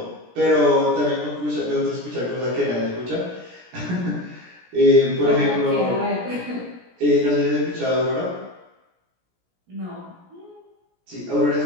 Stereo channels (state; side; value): late; left; 17 ms